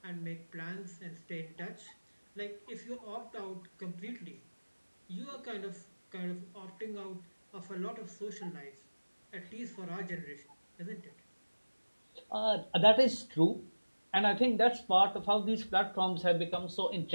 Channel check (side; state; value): both; inverted; correlation -1.00